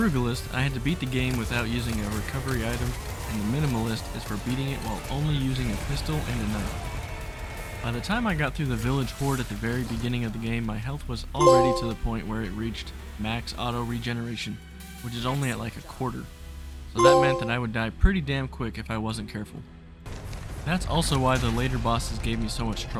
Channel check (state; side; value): identical; both; correlation 1.00